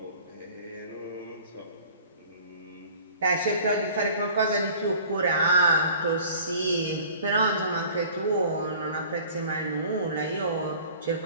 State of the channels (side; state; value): both; inverted; correlation -0.47